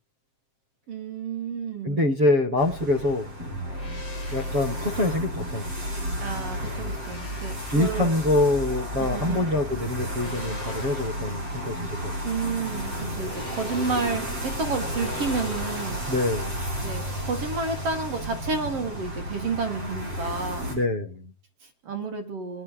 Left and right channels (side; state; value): left; late; 7.5 ms